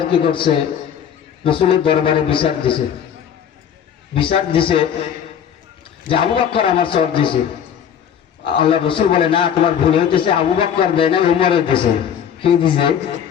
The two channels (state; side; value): quieter; right; 8.6 dB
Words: কি করছে, রাসূলের দরবারে বিচার দিছে। বিচার দিছে যে আবু বকর আমার চড় দিছে। আল্লাহ রাসূল বলে, না, তোমার ভুল হইতেছে, আবু বকর দেয় না, উমরের দিছে। কি দিছে?